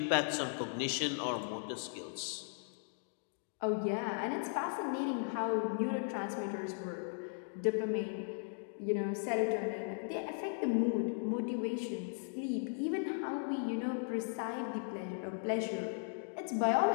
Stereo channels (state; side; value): silent; right; digital silence